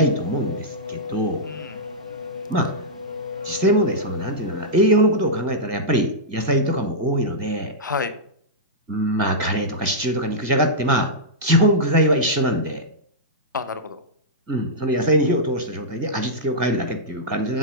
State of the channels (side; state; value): left; late; 1.8 ms